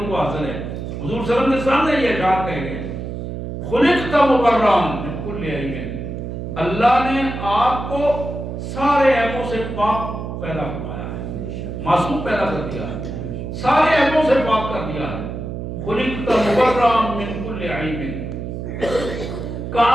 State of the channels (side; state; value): right; noise; hum, 6 dB below the sound